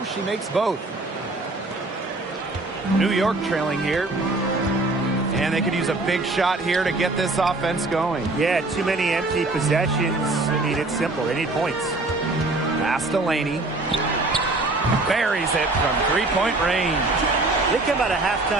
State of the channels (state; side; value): quieter; left; 3.0 dB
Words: she makes both. New York trailing here. And they could use a big shot here to get this offense going. Yeah, too many empty possessions. I mean, it's simple. They need points. Pass to Laney. Buries it from three-point range. They come out of